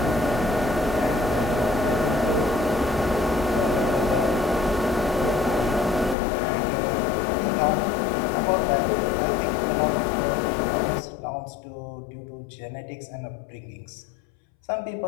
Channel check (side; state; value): right; drops out; at 6.2 s